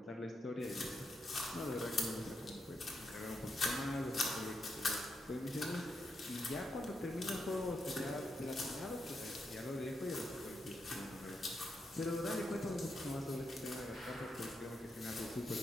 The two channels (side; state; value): both; normal; correlation 0.83